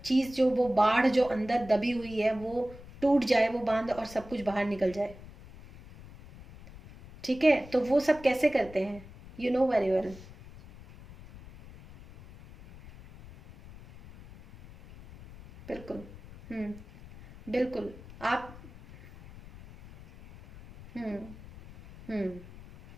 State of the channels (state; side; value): noise; left; rumble, 18 dB below the sound